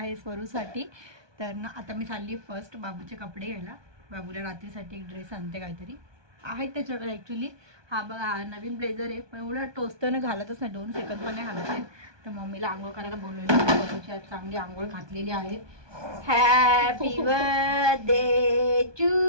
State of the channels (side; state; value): left; late; 1.2 ms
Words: स्वरूसाठी. तर ना आता मी चालली फर्स्ट बाबूचे कपडे घ्यायला. बाबूला रात्रीसाठी एक ड्रेस आणते काहीतरी आहेत त्याच्याकडे ॲक्च्युली. हा बघा हा नवीन ब्लेझर आहे पण एवढं टोचतं घालतच नाही 2 सेकंद पण नाही घालत आहे. तर मम्मीला आंघोळ करायला बोलवली. स्वरूची आज चांगली आंघोळ घातलेली आहे. Happy birthday to